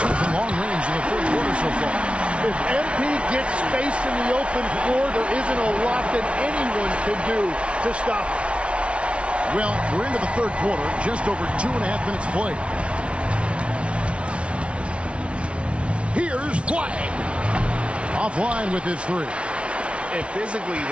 from long range in the 3rd quarter so far. If MP gets space in the open floor, there isn't a lot that anyone can do to stop it. Well, we're into the 3rd quarter, just over 2.5 minutes played. Here's Flag. Offline with his 3. And physically,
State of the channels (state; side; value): late; left; 0.060 ms